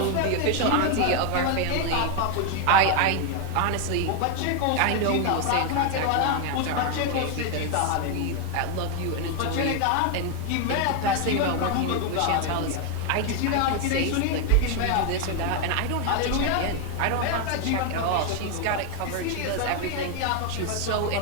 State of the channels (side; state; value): both; different; correlation 0.01